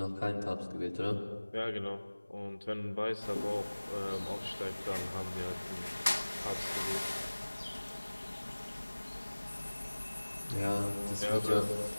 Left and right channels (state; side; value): inverted; both; correlation -1.00